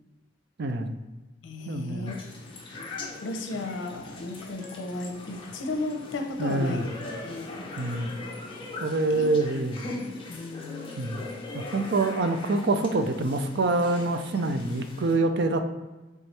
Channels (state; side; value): normal; both; correlation 0.33